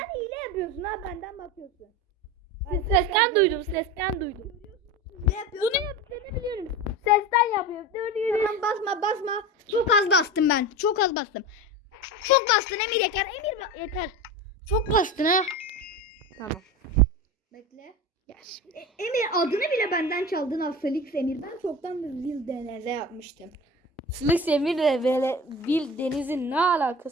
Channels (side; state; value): both; normal; correlation 0.28